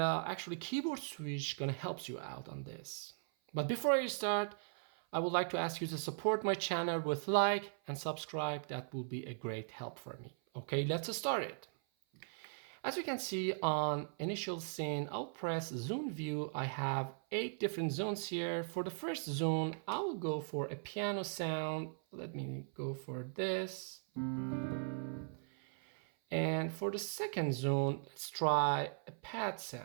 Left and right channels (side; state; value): left; silent; 52 dB below the other